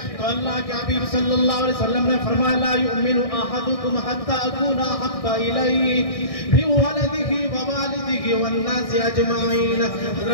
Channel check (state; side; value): late; right; 1.6 ms